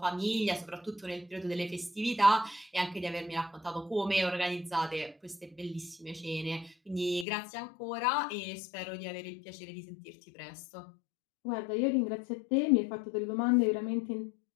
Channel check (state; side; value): drops out; right; at 7.2 s